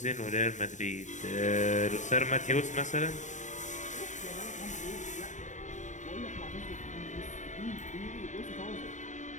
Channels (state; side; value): late; right; 0.35 ms